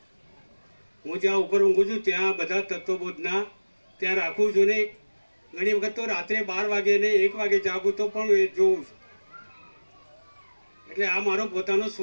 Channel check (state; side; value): inverted; both; correlation -1.00